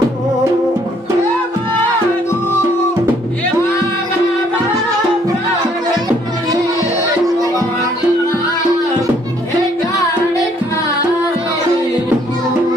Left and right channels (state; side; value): normal; both; correlation 0.65